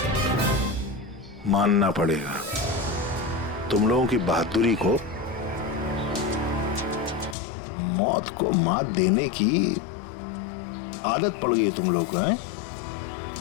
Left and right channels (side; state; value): right; drops out; at 7.4 s